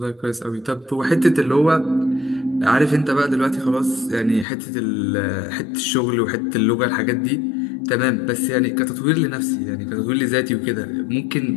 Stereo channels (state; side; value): drops out; right; at 4.5 s